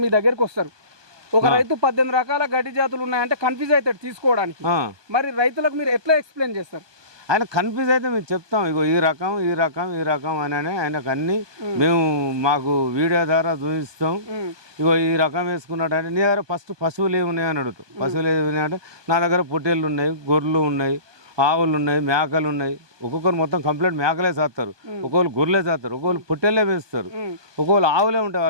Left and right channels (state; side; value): late; left; 1.2 ms